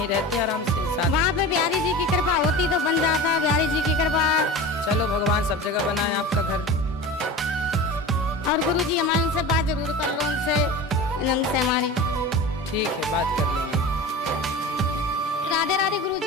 रहते आराम से साथ। वहाँ पे बिहारी जी की कृपा होती तो बन जाता, बिहारी जी की कृपा। चलो भगवान सब जगह बनाए आपका घर। और गुरुजी हमारे उनसे बात जरूर कर लो, उनसे हमारी। ठीक है, बात कर लेंगे। राधे राधे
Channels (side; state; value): both; normal; correlation 0.32